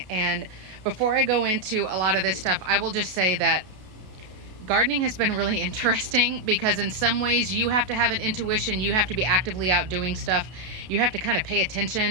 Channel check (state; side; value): late; left; 32 ms